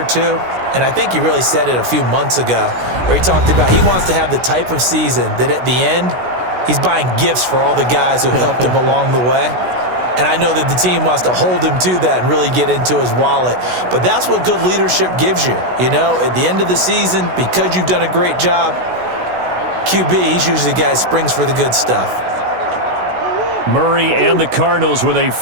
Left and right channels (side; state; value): left; late; 16 ms